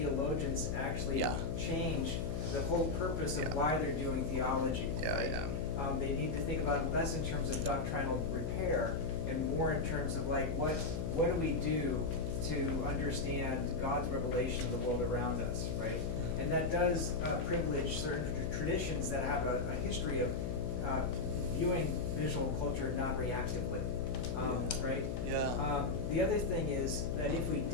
to actually Yeah. change the whole purpose of Yeah. why they're doing theology. Yeah, right? yeah. They need to think about it less in terms of doctrinal repair and more in terms of like what do we do to understand God's revelation of the world around us, right? And that does privilege certain traditions that have a history of viewing visual culture non-reactively, right? Yeah. The other thing is that if we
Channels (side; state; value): left; noise; hum, 2 dB below the sound